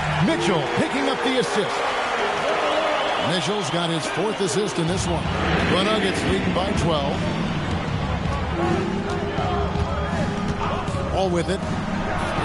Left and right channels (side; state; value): both; identical; correlation 1.00